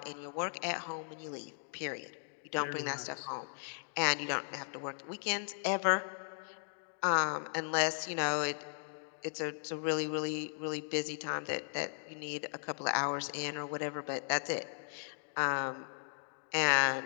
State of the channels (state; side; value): silent; right; digital silence